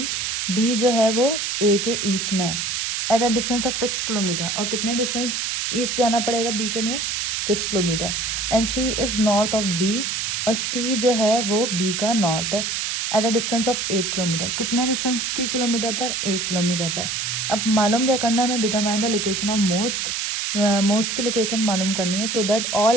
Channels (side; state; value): right; noise; hiss, 1 dB below the sound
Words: B जो है वो A के ईस्ट में है eight a distance of 6 kilometre. और कितने डिस्टेंस ईस्ट जाना पड़ेगा B के लिए? 6 kilometre. And C is north of B और C जो है वो B का नॉर्थ है eight a distance of 8 kilometre. कितने डिस्टेंस की किलोमीटर पर? 8 किलोमीटर पर. अब मालूम क्या करना है हमें? Determine the location of mosque. Mosque की लोकेशन मालूम करनी है so that